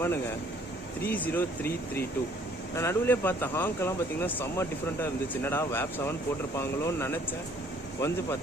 30332. நான் நடுவிலே பார்த்த ஹாங்கெல்லாம் பார்த்தீங்கன்னா செம்ம டிஃப்ரெண்ட்டாக இருந்துச்சு. என்னடா வேப் 7 போட்டிருப்பாங்களோன்னு நினச்சேன். வந்து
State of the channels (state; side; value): normal; both; correlation 0.59